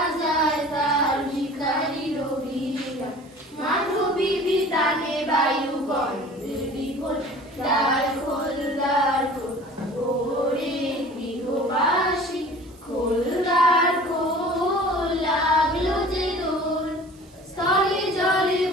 তার ভিখারি রবিরা মাধবী বিতানে বায়ু গন্ধের বিকল দ্বার খোল দ্বার খোল ওরে গৃহবাসী খোল দ্বার খোল লাগলো যে দোল স্থলে জলে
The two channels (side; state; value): right; noise; hiss, 29 dB below the sound